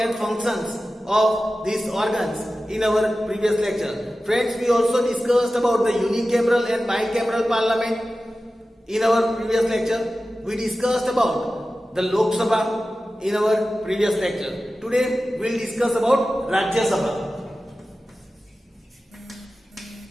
functions of these organs in our previous lecture. Friends, we also discussed about the unicameral and bicameral parliament in our previous lecture. We discussed about the Lok Sabha in our previous lecture. Today, we will discuss about Rajya Sabha.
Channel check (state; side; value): normal; both; correlation 0.95